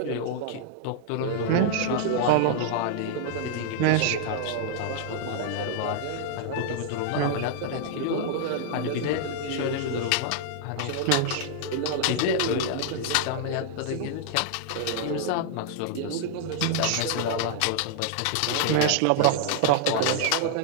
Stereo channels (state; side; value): different; both; correlation -0.01